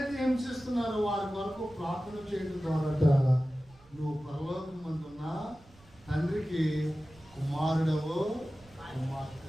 హింసిస్తున్నారో వారి కొరకు ప్రార్థన చేయడం ద్వారా నువ్వు పరలోకం మందున్న తండ్రికి కుమారుడవో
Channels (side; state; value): right; noise; rumble, 25 dB below the sound